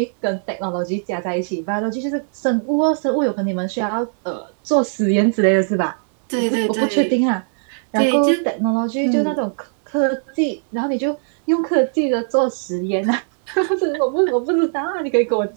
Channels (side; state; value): left; silent; digital silence